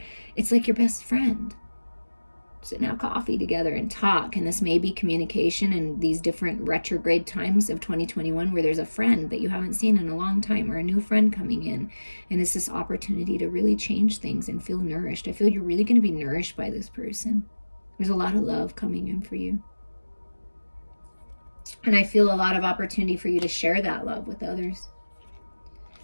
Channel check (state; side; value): inverted; both; correlation -1.00